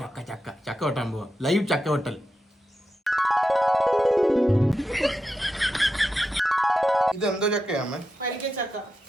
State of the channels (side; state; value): both; normal; correlation 0.88